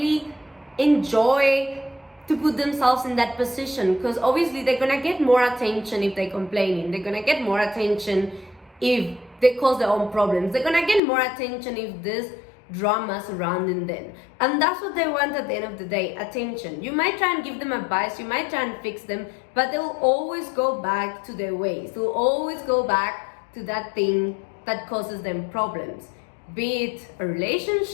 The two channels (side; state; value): right; drops out; at 11.0 s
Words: enjoy to put themselves in that position, because obviously they're gonna get more attention if they're complaining. They're gonna get more attention if they cause their own problems. They're gonna get more attention if there's drama surrounding them, and that's what they want at the end of the day, attention. You might try and give them advice, you might try and fix them, but they'll always go back to their ways. They'll always go back to that thing that causes them problems, be it a